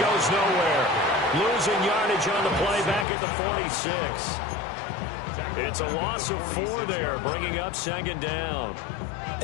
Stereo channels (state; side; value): drops out; right; at 3.1 s